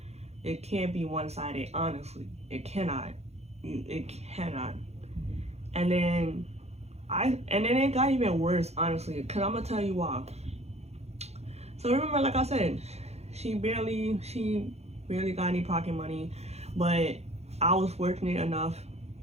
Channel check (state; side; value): late; left; 0.31 ms